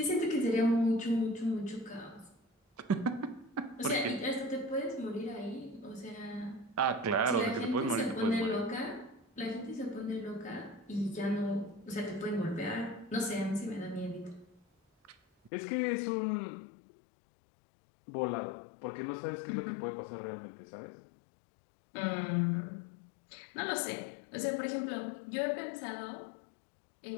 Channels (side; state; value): right; drops out; at 15.5 s